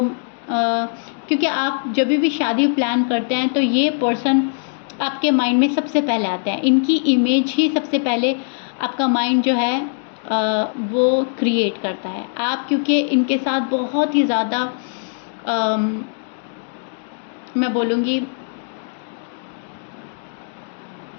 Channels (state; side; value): silent; right; digital silence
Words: क्योंकि आप जब भी शादी प्लान करते हैं तो ये पर्सन आपके माइंड में सबसे पहले आते हैं। इनकी इमेज ही सबसे पहले आपका माइंड जो है वो क्रिएट करता है। आप क्योंकि इनके साथ बहुत ही ज़्यादा मैं बोलूँगी